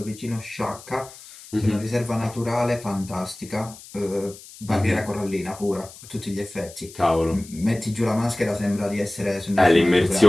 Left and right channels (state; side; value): noise; left; hiss, 18 dB below the sound